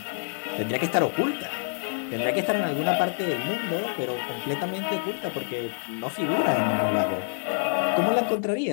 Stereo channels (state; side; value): silent; right; 60 dB below the other